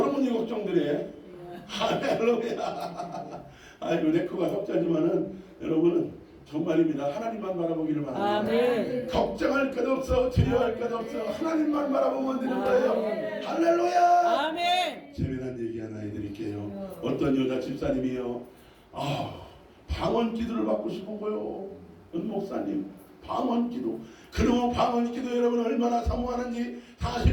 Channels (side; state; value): both; identical; correlation 1.00